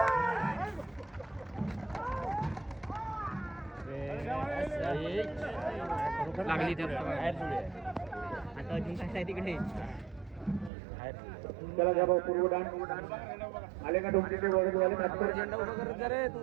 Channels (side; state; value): left; drops out; at 10.7 s